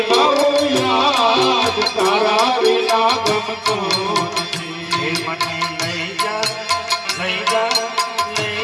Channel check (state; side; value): identical; both; correlation 1.00